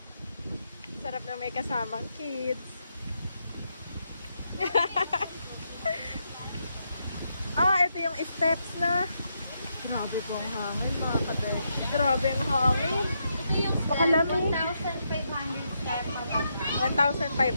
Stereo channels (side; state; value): both; inverted; correlation -0.81